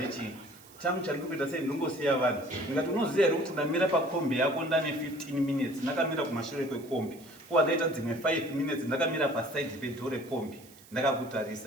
changu chandiri kuita sei ndingosiya vanhu. Ndikati unoziva here kuti ndamira pakombi yako ndane 15 minutes ndakamira kumashure kwekombi, kuva ndaita dzimwe 5 minutes ndakamira pasaidi pedhoo rekombi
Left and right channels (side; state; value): right; noise; hiss, 23 dB below the sound